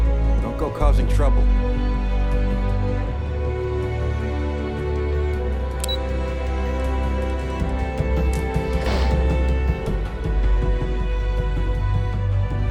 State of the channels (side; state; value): both; identical; correlation 1.00